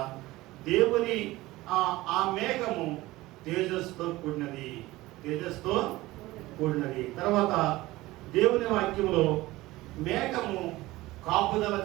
దేవుని ఆ మేఘము తేజస్సుతో కూడినది. తేజస్సుతో కూడినది. తర్వాత దేవుని వాక్యంలో మేఘము కాపుదల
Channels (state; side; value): quieter; left; 18.6 dB